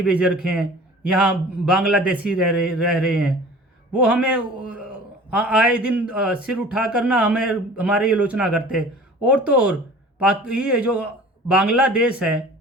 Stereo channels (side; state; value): both; normal; correlation 0.44